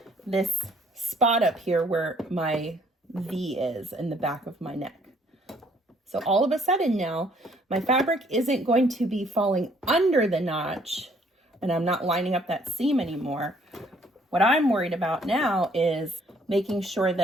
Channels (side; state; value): both; normal; correlation 0.63